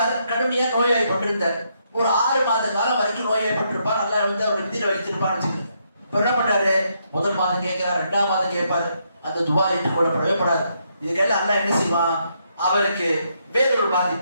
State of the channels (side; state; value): both; inverted; correlation -0.76